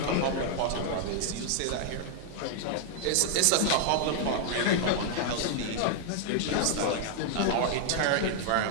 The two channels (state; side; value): different; both; correlation 0.00